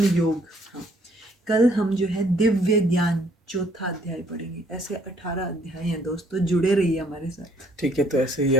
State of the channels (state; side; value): normal; both; correlation 0.65